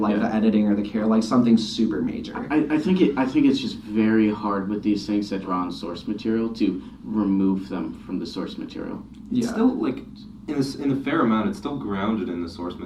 the editing or the care, like something super major. I think it's just very hard with these things that draw on source material to remove them from the source material. It's still like in a fair amount, it's still grounded in the source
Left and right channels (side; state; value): both; identical; correlation 1.00